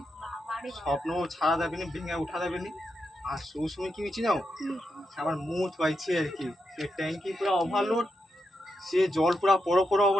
বাবারে। স্বপ্ন ছাড়া যাবে না, ভেঙে উঠা যাবে না। আর সেই সময় কি হয়েছি নাও, আমার মুখ পাইছে আর কি, সে ট্যাঙ্কি পুরো ওভারলোড, সে জল পুরো পড়ো পড়ো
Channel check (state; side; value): normal; both; correlation 0.85